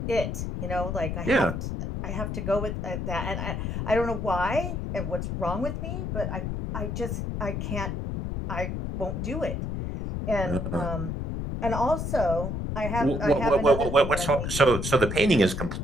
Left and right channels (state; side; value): noise; left; rumble, 3 dB below the sound